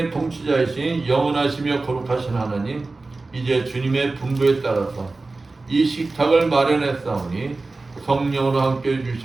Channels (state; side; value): quieter; left; 3.5 dB